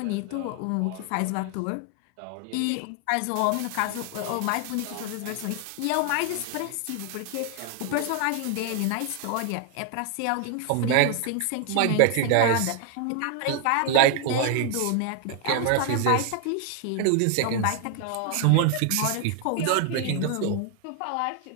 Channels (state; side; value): different; both; correlation 0.00